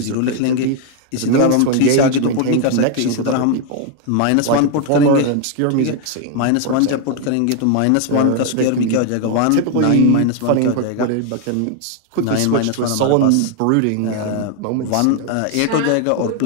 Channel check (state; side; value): different; both; correlation 0.01